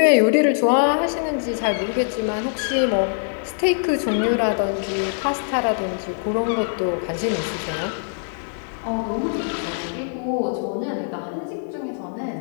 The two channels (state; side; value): silent; right; 64 dB below the other